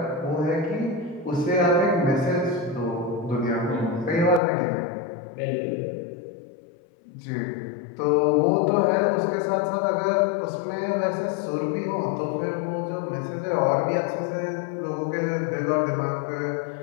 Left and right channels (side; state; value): right; drops out; at 4.4 s